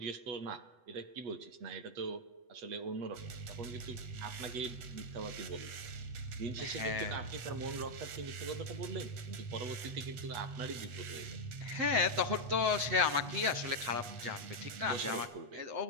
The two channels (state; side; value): late; left; 8.2 ms